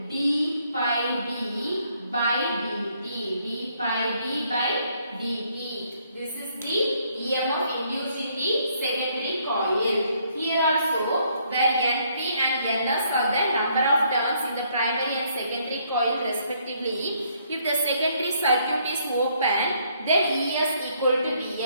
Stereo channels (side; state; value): both; inverted; correlation -0.68